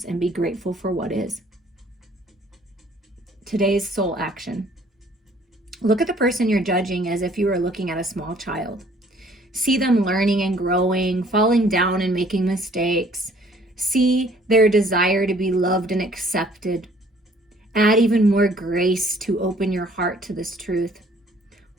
and be grateful for what is. Today's soul action. Look at the person you're judging as if you were looking at a small child. See them learning and growing, falling down and making mistakes. See their desire to be loved and accepted. Add even more grace to open your heart to this truth.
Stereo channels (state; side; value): normal; both; correlation 0.58